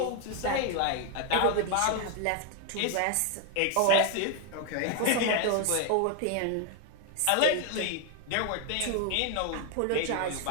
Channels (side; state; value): both; different; correlation 0.01